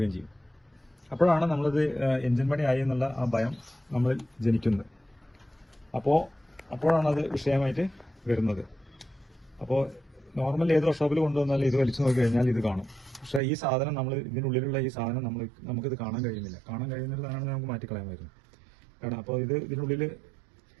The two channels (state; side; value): drops out; left; at 13.4 s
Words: ചെയ്യും. അപ്പോഴാണ് നമ്മളത് എഞ്ചിൻ പണിയായി എന്നുള്ള ആ ഭയം നമ്മളിൽ ജനിക്കുന്നത്. അപ്പോഴാണ് അത് വിഷയമായിട്ട് വരുന്നത്. അപ്പോൾ നോർമൽ ഏത് വർക്ക്ഷോപ്പിൽ കൊണ്ടുവന്നാലും ഇത് വലിച്ചു നോക്കി കഴിഞ്ഞാൽ ഇത് കാണും. പക്ഷേ ഈ സാധനം ഇതിനുള്ളിലുള്ള ഈ സാധനം നമുക്കിത് കാണാൻ കഴിയുന്നില്ല. കാണാൻ കഴിയുന്നതാണ് നമുക്ക് മാറ്റിക്കളയാമായിരുന്നു. കാരണം അപ്പോൾ ഇതിനുള്ളിൽ